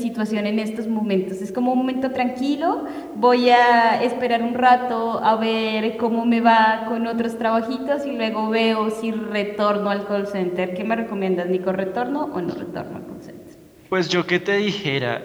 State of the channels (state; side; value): identical; both; correlation 1.00